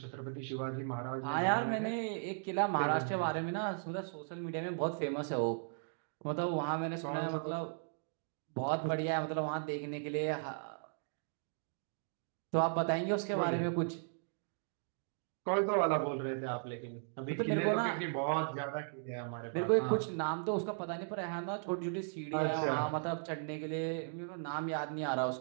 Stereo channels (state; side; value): silent; left; digital silence